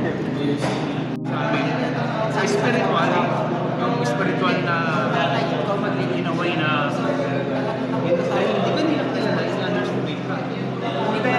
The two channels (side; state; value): both; identical; correlation 1.00